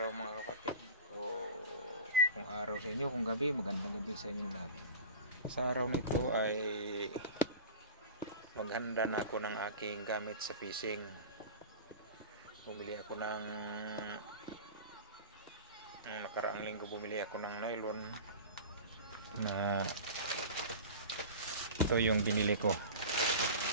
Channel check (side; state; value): both; inverted; correlation -0.33